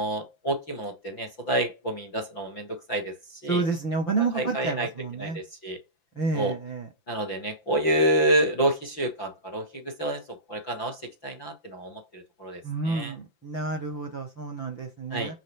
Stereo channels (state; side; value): late; right; 5.9 ms